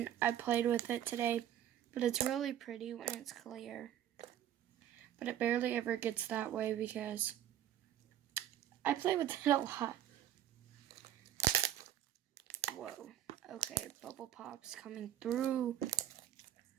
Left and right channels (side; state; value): left; quieter; 11.4 dB